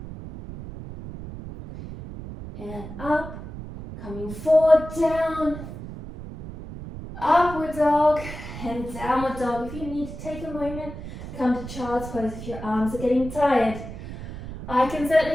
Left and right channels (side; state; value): right; noise; rumble, 11 dB below the sound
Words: And up, coming forward, down, upward dog, and downward dog. If you need to take a moment, come to child's pose if your arms are getting tired. I can